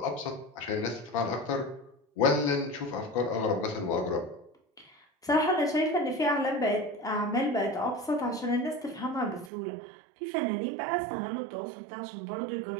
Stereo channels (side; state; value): left; drops out; at 9.5 s